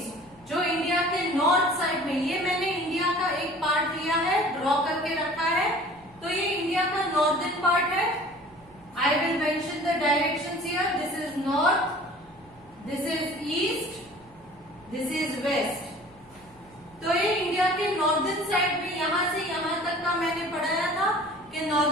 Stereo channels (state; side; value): noise; right; hum, 28 dB below the sound